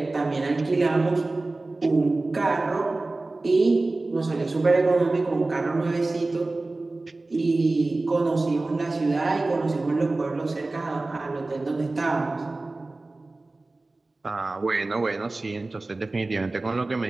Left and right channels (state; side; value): quieter; left; 3.1 dB